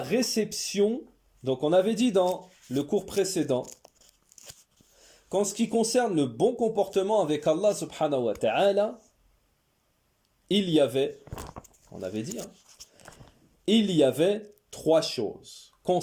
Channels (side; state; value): both; identical; correlation 1.00